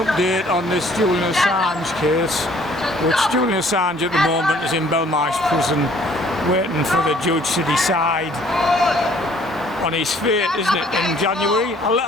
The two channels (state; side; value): normal; both; correlation 0.59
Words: update on this Julian Assange case, which Julian Assange at the moment is in Belmarsh prison waiting for the judge to decide on his fate, isn't it, in January?